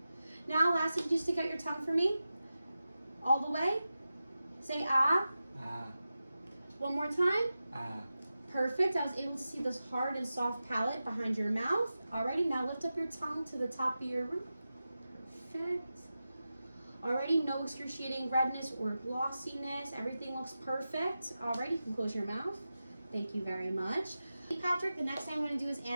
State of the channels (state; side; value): inverted; both; correlation -0.93